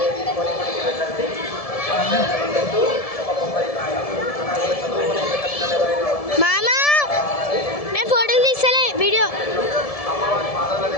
మామా నేను ఫోటోలు తీస్తలే వీడియో.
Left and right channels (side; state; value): right; late; 1.7 ms